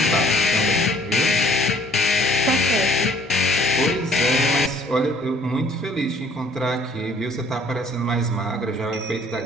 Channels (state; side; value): normal; both; correlation 0.58